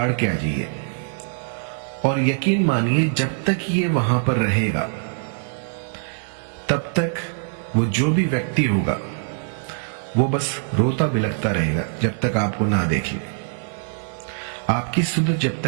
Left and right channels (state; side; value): silent; left; digital silence